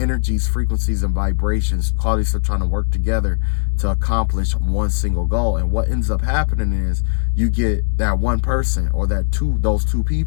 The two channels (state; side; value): silent; right; 67 dB below the other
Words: frequencies, and vibrations. Qualities are trying to work together to accomplish one single goal. And what ends up happening is you get that one person or those two